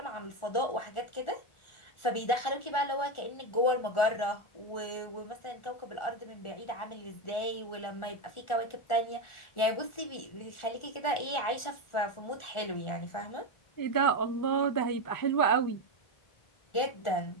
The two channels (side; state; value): right; late; 1.4 ms